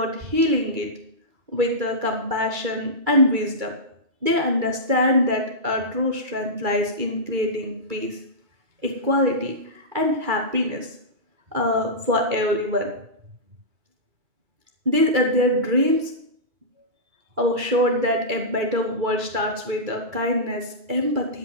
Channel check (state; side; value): late; left; 2.3 ms